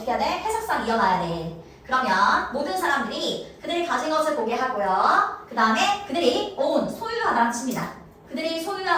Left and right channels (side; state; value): both; identical; correlation 1.00